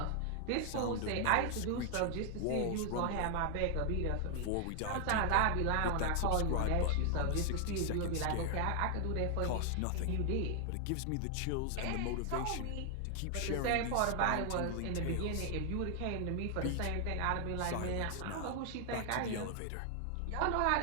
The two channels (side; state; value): both; different; correlation 0.00